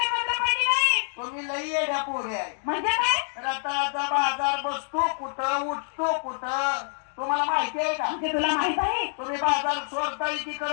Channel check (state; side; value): silent; right; 59 dB below the other